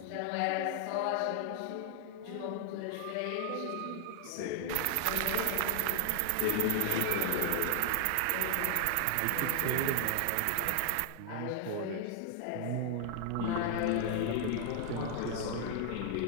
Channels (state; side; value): different; both; correlation 0.00